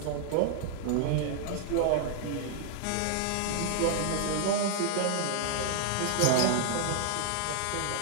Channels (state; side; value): different; both; correlation 0.00